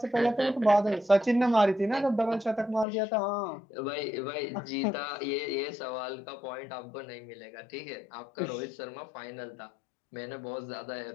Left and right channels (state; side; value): drops out; right; at 2.9 s